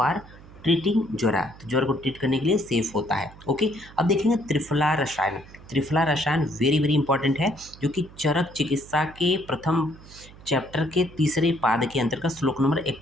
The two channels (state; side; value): noise; right; hum, 20 dB below the sound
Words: treating jwara, तो ज्वर को ट्रीट करने के लिए सेफ होता है। ओके, अब देखेंगे त्रिफला रसायन। त्रिफला रसायन वेरी वेरी इंपॉर्टेंट है, जो कि चरक चिकित्सा के प्रथम चैप्टर के तीसरे पाद के अंतर्गत श्लोक नंबर